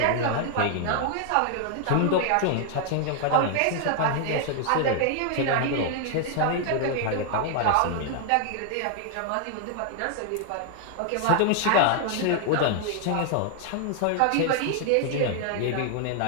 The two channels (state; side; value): different; both; correlation 0.00